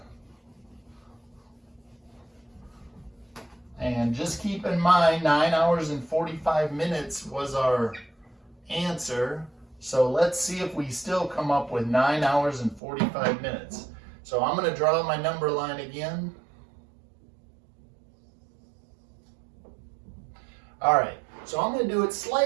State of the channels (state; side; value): drops out; left; at 12.8 s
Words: And just keep in mind, 9 hours and 45 minutes was our answer. So let's see if we still come up with 9 hours and 45 minutes. So I'm going to draw my number line again. All right, so I'm going to do it